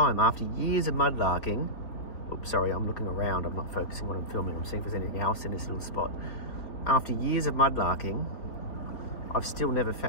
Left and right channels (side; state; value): right; late; 3.9 ms